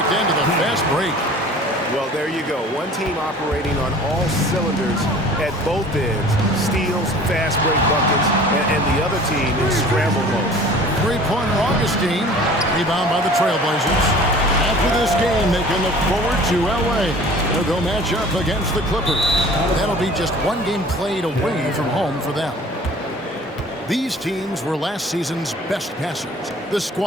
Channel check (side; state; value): both; normal; correlation 0.46